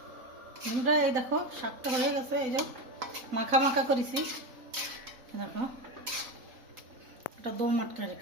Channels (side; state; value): left; late; 4.0 ms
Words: আমরা এই দেখো শাকটা হয়ে গেছে। এই যে মাখা মাখা করেছি, দেখো এটা দো মাটকা